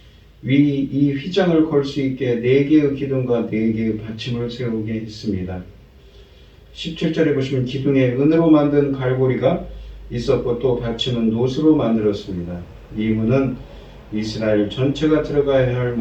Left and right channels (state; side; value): identical; both; correlation 1.00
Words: 이 휘장을 걸 수 있게 4개의 기둥과 4개의 받침을 세우게 했습니다. 17절에 보시면 기둥에 은으로 만든 갈고리가 있었고 또 받침은 노수로 만들었습니다. 이 문은 이스라엘 전체가 들어가야 할